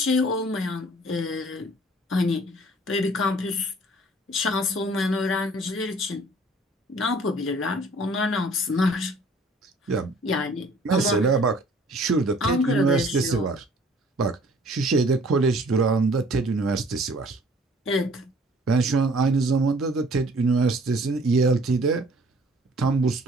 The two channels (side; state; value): both; normal; correlation 0.54